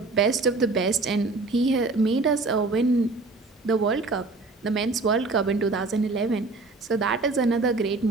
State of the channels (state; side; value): quieter; left; 3.5 dB